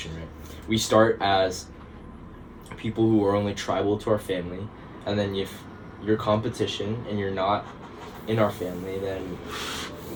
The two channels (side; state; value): both; identical; correlation 1.00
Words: right? We start as people who are only tribal to our family, and then if you're competition and you're not in our family, then